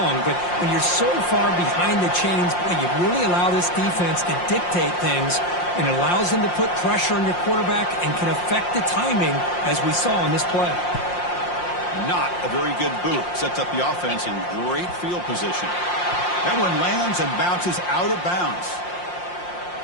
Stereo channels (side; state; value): right; late; 5.7 ms